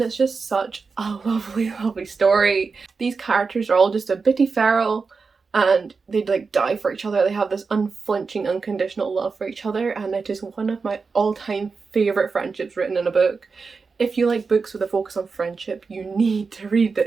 it's just such a lovely story. These characters are all just a bitty feral, and they'd like die for each other. They have this unflinching, unconditional love for each other, and it is one of my all-time favourite friendships written in a book. If you like books with a focus on friendship, you need to read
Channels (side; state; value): left; quieter; 4.7 dB